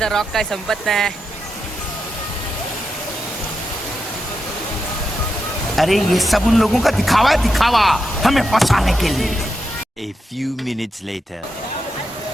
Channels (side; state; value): both; normal; correlation 0.86